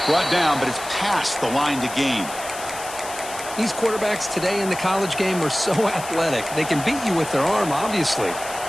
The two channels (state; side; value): noise; left; hiss, 12 dB below the sound